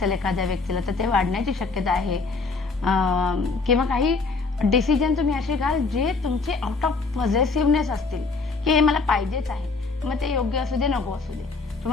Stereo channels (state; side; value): quieter; right; 4.1 dB